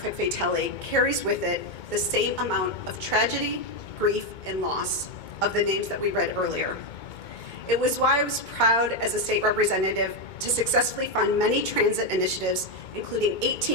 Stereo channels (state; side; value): late; right; 2.2 ms